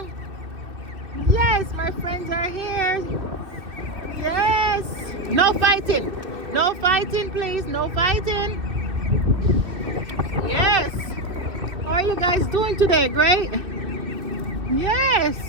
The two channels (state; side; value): late; left; 2.6 ms